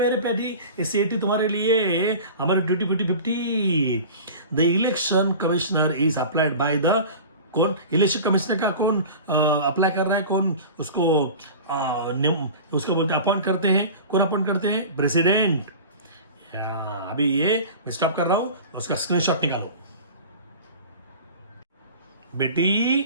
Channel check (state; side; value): inverted; both; correlation -0.37